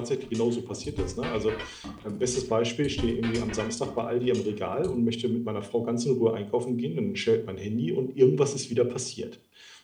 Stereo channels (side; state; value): both; identical; correlation 1.00